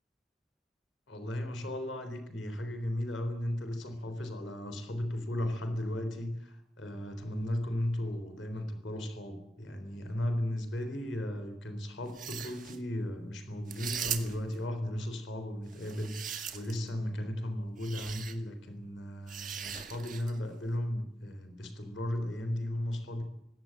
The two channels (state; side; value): normal; both; correlation 0.85